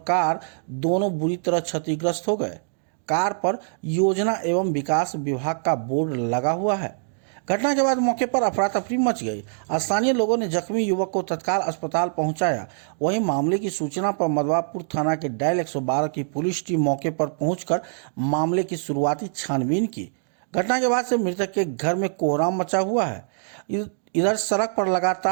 कार दोनों बुरी तरह क्षतिग्रस्त हो गए। कार पर योजना एवं विकास विभाग का बोर्ड लगा हुआ है। घटना के बाद मौके पर अफरा तफरी मच गई। स्थानीय लोगों ने जख्मी युवक को तत्काल अस्पताल पहुंचाया। वहीं मामले की सूचना पर मधवापुर थाना के डायल 112 की पुलिस टीम मौके पर पहुंचकर मामले की शुरुआती छानबीन की। घटना के बाद से मृतक के घर में कोहराम मचा हुआ है। इधर सड़क पर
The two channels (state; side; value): silent; left; digital silence